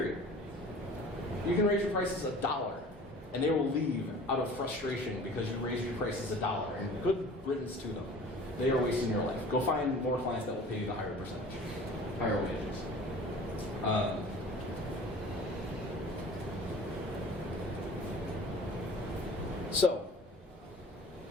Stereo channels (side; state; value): both; normal; correlation 0.44